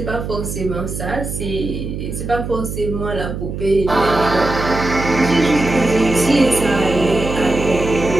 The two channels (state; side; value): noise; right; hum, 6 dB below the sound